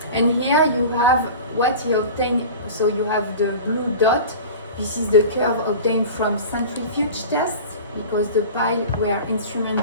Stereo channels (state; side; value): inverted; both; correlation -0.35